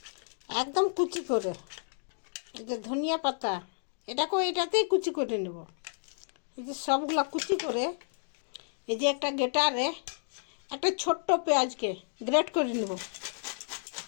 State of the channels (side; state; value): right; silent; digital silence